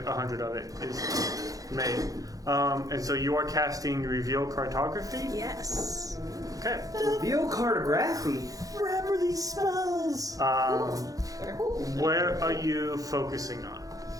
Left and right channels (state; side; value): late; left; 0.17 ms